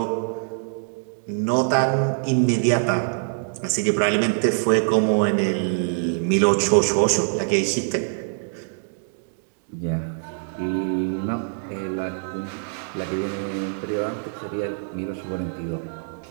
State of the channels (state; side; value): silent; left; digital silence